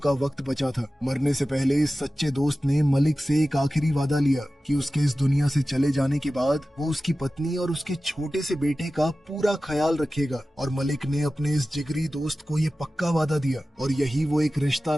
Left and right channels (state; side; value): normal; both; correlation 0.95